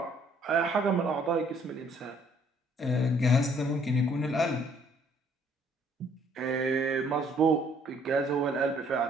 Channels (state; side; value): normal; both; correlation 0.62